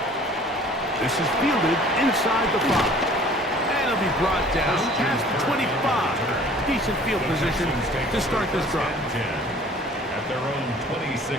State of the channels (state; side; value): normal; both; correlation 0.51